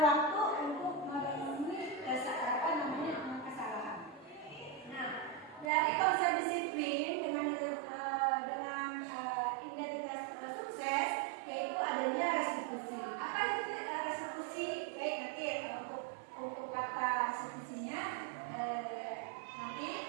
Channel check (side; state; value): left; drops out; at 5.7 s